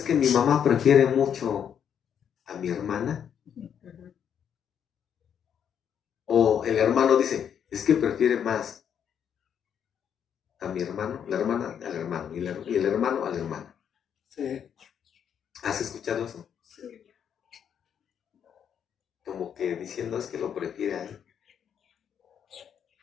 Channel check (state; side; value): quieter; right; 8.4 dB